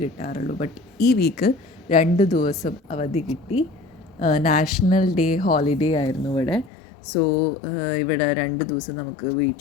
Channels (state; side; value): drops out; right; at 6.7 s